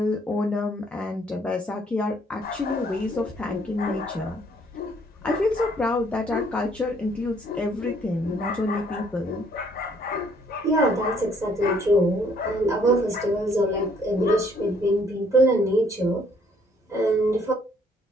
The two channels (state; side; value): normal; both; correlation 0.63